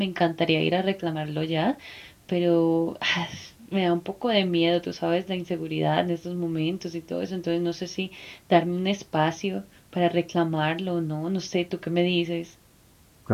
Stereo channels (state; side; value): identical; both; correlation 1.00